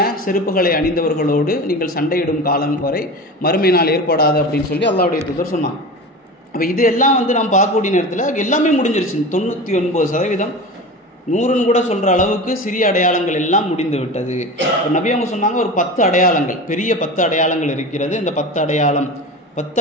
செருப்புகளை அணிந்தவர்களோடு நீங்கள் சண்டையிடும் காலம் வரை மறுமை நாள் ஏற்படாது அப்படின்னு சொல்லி அல்லாஹ்வுடைய தூதர் சொன்னாங்க. அப்போ இது எல்லாம் நாம் பார்க்கக்கூடிய நேரத்தில் எல்லாமே முடிஞ்சிருச்சு. 99% 100ன்னு கூட சொல்கிற அளவுக்கு சிறிய அடையாளங்கள் எல்லாம் முடிந்து விட்டது. நபி அவங்க சொன்னாங்க, ஒரு 10 அடையாளங்கள், பெரிய 10 அடையாளங்கள் இருக்கிறது. இந்த 10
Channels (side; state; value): both; normal; correlation 0.30